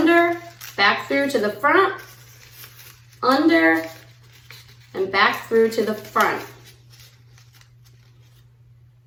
back through to the front, under, and back through to the front.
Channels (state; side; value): identical; both; correlation 1.00